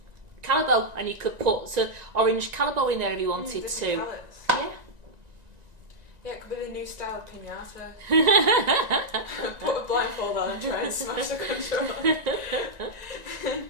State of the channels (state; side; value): late; left; 1.9 ms